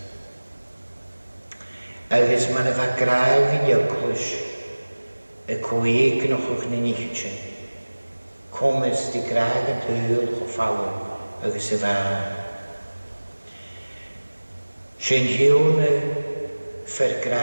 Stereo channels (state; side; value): inverted; both; correlation -1.00